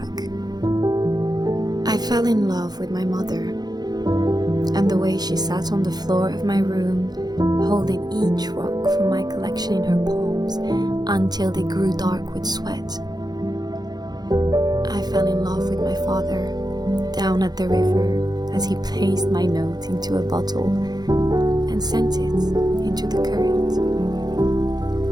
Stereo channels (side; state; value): left; late; 0.19 ms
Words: I fell in love with my mother and the way she sat on the floor of my room, holding each rock from my collection in her palms until they grew dark with sweat. I fell in love with my father down at the river as he placed my note into a bottle and sent it into the current.